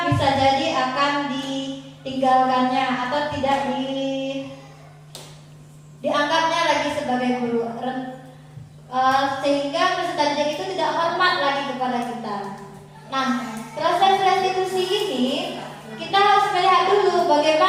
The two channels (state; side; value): identical; both; correlation 1.00